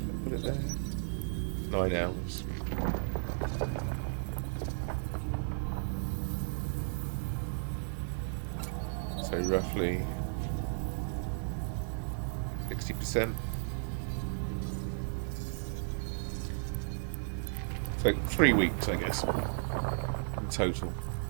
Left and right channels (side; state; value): left; silent; digital silence